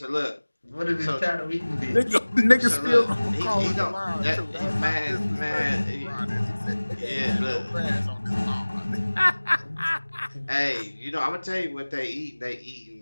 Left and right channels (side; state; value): both; inverted; correlation -1.00